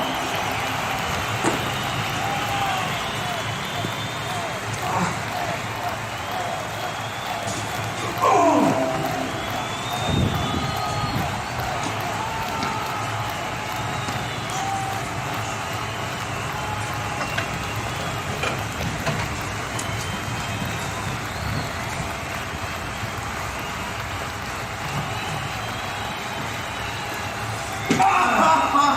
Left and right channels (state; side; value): identical; both; correlation 1.00